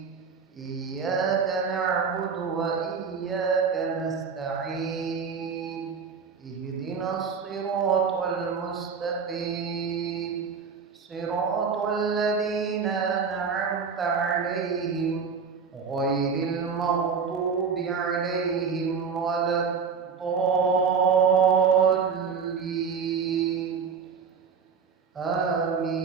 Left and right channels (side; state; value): left; quieter; 5.9 dB